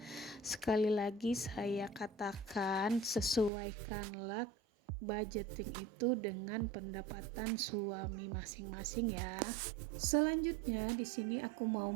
Sekali lagi saya katakan, sesuaikanlah budgeting itu dengan pendapatan suami masing-masing ya. Selanjutnya di sini aku mau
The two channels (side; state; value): left; drops out; at 3.5 s